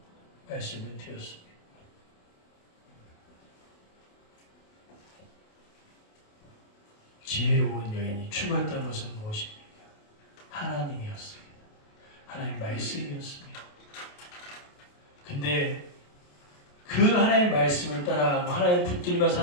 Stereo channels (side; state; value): right; late; 28 ms